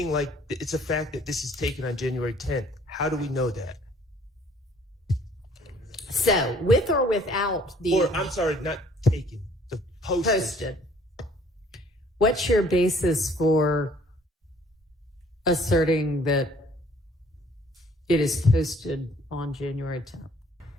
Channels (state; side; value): normal; both; correlation 0.58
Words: like it's a fact that this is taken on January 10th. How do we know that? So, with or without the... Or, I'm sorry, not taken, the posted. What's your basis for asserting that it is posted on January 10th?